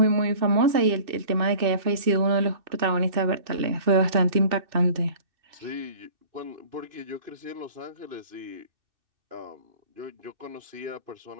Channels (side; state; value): left; late; 2.6 ms